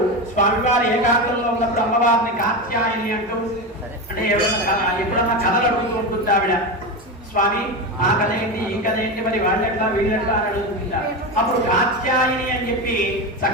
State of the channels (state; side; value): normal; both; correlation 0.19